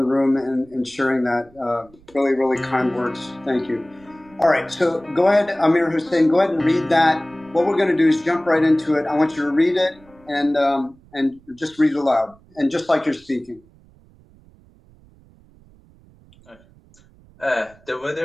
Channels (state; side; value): noise; right; rumble, 28 dB below the sound